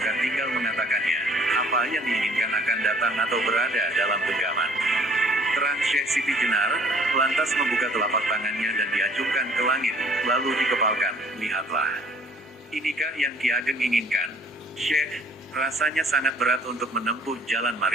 tinggal mengatakannya. Apa yang diinginkan akan datang atau berada dalam genggaman. Terang Syekh Siti Jenar, lantas membuka telapak tangannya dan diacungkan ke langit, lalu dikepalkan, lihatlah. Inikah yang Ki Ageng inginkan? Syekh, rasanya sangat berat untuk menempuh jalan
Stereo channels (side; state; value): both; normal; correlation 0.56